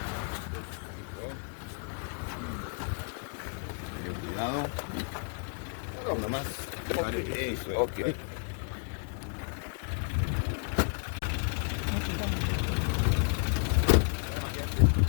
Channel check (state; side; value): quieter; right; 39.1 dB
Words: Cuidado. No, nomás. Okay.